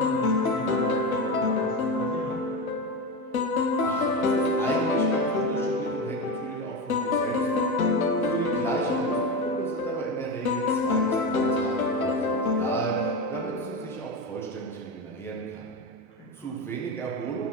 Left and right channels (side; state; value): both; normal; correlation 0.19